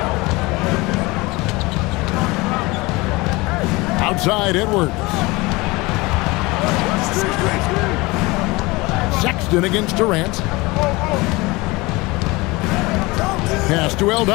Outside Edwards. Sexton against Durant. Pass to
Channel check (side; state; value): right; quieter; 23.0 dB